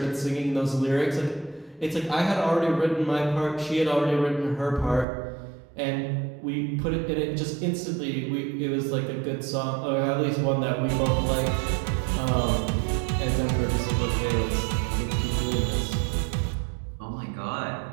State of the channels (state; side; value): drops out; left; at 5.1 s